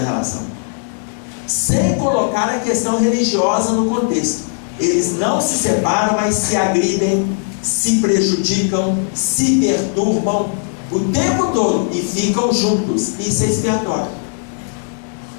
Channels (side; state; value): right; silent; 67 dB below the other